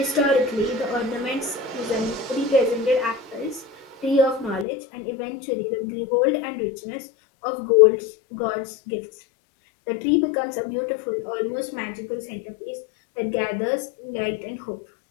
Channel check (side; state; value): right; drops out; at 4.7 s